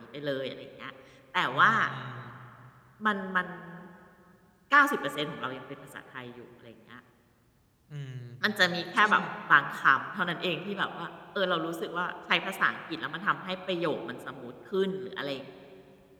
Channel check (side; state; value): both; identical; correlation 1.00